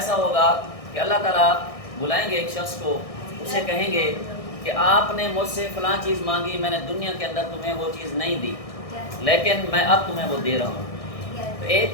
ہوگا کہ اللہ تعالیٰ بلائیں گے ایک شخص کو، اسے کہیں گے کہ آپ نے مجھ سے فلاں چیز مانگی، میں نے دنیا کے اندر تمہیں وہ چیز نہیں دی لیکن میں اب تمہیں وہ دے رہا ہوں۔ تو ایک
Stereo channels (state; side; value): late; right; 1.6 ms